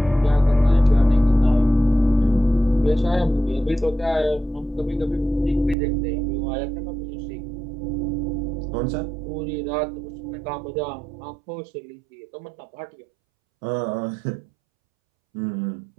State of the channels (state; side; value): drops out; left; at 5.8 s